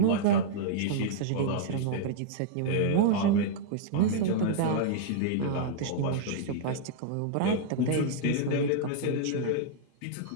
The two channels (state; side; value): different; both; correlation -0.01